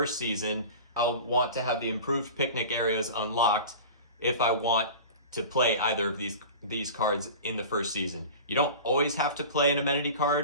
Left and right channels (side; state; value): both; inverted; correlation -0.35